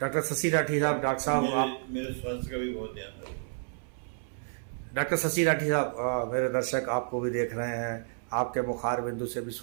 शशि राठी साहब, डॉक्टर साहब आप मेरे स्वास्थ्य का भी बहुत ध्यान रखते हैं। डॉक्टर शशि राठी साहब, मेरे दर्शक आपको भी देख रहे हैं, आपके मुखार बिंदु से भी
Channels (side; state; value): left; silent; 58 dB below the other